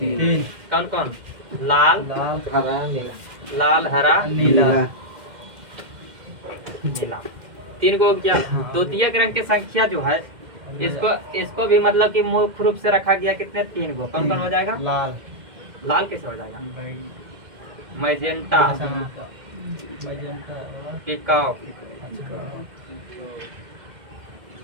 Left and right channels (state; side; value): late; left; 2.1 ms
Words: कौन कौन? लाल, हरा, नीला। 3 गो क्या? द्वितीयक रंग की संख्या जो है इसको भी मतलब कि मुख्य रूप से रखा गया। कितने? 3 गो। कौन कौन हो जाएगा? लाल कैसे हो जाएगा? मैजेंटा, पिकाओ,